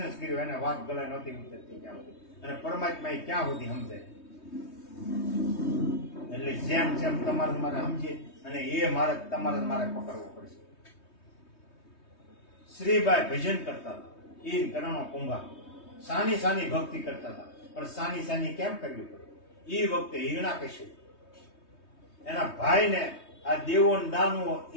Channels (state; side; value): late; right; 3.2 ms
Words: જ કર્યો, એને વાત ગળે નહોતી ઉતરતી ક્યાં સુધી. અને પરમાત્મા ક્યાં સુધી સમજાય. એટલે જેમ તમારે મારે સમજીએ અને એ માર્ગ તમારે મારે પકડવો પડશે. શ્રીબાઈ ભજન કરતા હતા, ઈન કરણો કુંભા સાની ભક્તિ કરતા હતા. પણ સાની કેમ કરવી પડે? એ વખતે હિરણાકશ્યપ એના ભાઈને આ દેવો દાનવો